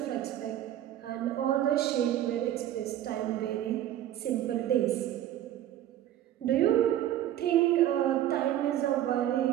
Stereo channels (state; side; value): quieter; left; 12.3 dB